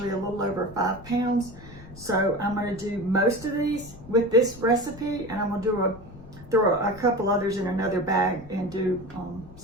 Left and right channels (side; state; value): left; noise; rumble, 18 dB below the sound